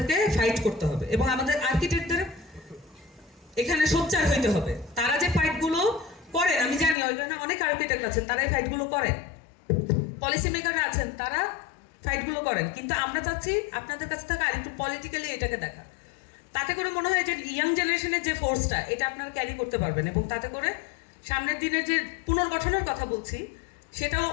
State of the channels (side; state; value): right; drops out; at 7.0 s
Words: ফাইট করতে হবে। এবং আমাদের আর্কিটেক্টদের এখানে সোচ্চার হইতে হবে। তারা যে ফাইটগুলো করেন, আমি জানি ওইখানে অনেক আর্কিটেক্ট আছেন, তারা এই ফাইটগুলো করেন, পলিসি মেকাররা আছেন, তারা ফাইটগুলো করেন। কিন্তু আমরা চাচ্ছি আপনাদের কাছ থেকে আরেকটু পলিটিক্যালি এটাকে দেখা। তাতে করে মনে হয় যে ইয়াং জেনারেশনের যে ফোর্সটা, এটা আপনারা ক্যারি করতে পারবেন এবং তাতে করে সামনের দিনে যে পুনর্গঠনের কথা বলছি সেটাও